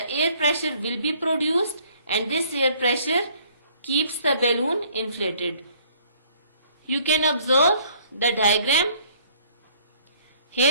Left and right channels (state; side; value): inverted; both; correlation -0.60